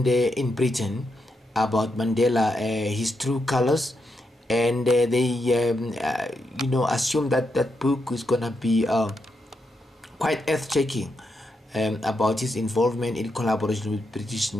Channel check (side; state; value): both; normal; correlation 0.83